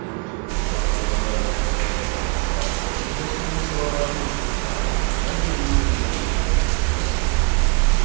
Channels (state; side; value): quieter; left; 31.4 dB